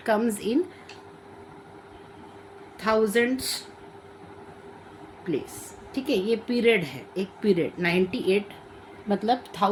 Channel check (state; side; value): identical; both; correlation 1.00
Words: comes in thousands place, ठीक है। ये पीरियड है, एक पीरियड 98 मतलब